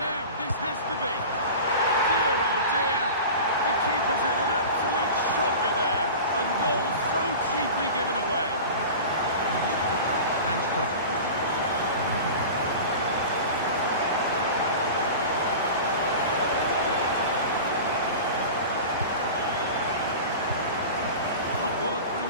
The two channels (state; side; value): inverted; both; correlation -0.33